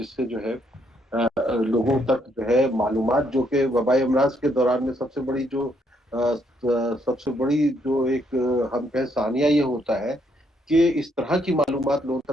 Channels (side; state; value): both; normal; correlation 0.73